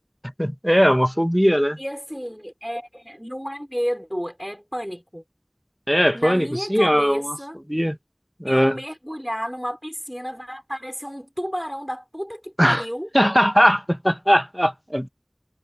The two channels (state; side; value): identical; both; correlation 1.00